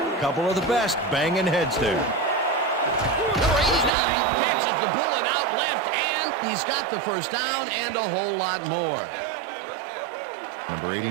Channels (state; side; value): drops out; left; at 3.9 s